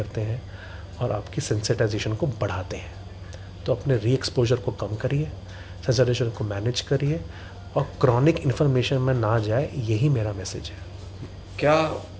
हैं और आपकी सेंसिटाइजेशन को बढ़ाते हैं। तो अपने री एक्सपोजर को कम करिए, सेंसिटाइजेशन को मैनेज करिए और क्रॉनिक इन्फ्लेमेशन में ना जाए, यही मेरा मैसेज है। क्या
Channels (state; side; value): identical; both; correlation 1.00